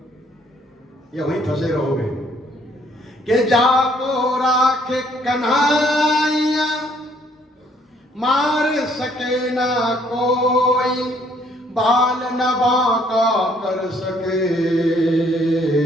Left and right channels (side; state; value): both; normal; correlation 0.64